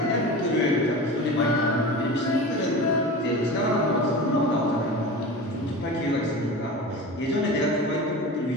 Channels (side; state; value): both; normal; correlation 0.31